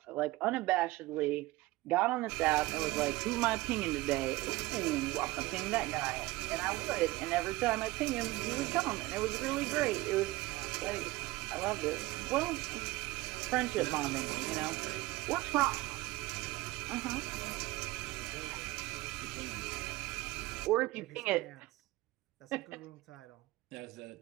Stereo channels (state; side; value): quieter; left; 19.5 dB